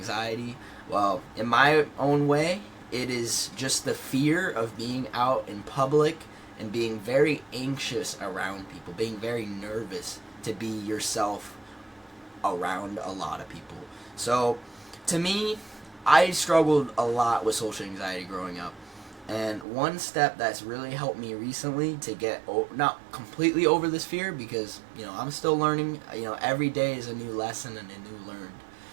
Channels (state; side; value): drops out; left; at 19.7 s